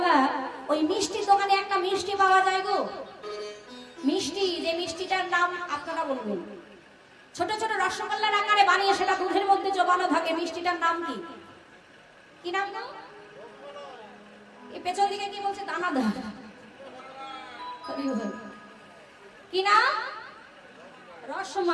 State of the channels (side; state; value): both; identical; correlation 1.00